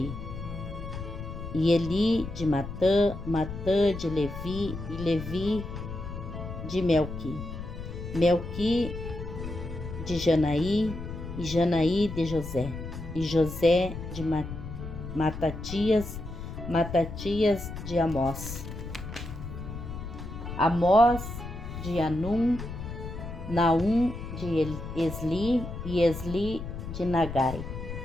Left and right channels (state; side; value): noise; left; rumble, 8 dB below the sound